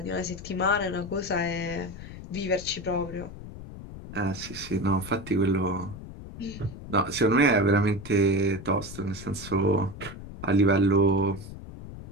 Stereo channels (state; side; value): noise; left; rumble, 13 dB below the sound